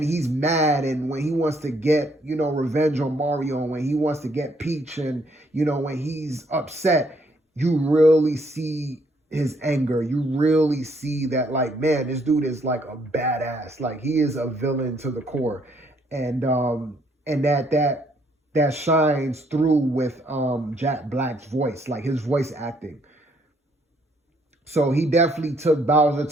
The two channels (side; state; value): both; normal; correlation 0.68